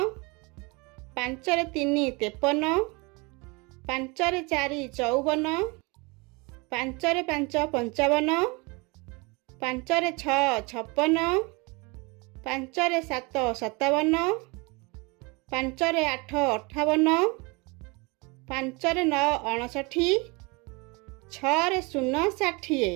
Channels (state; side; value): quieter; left; 27.6 dB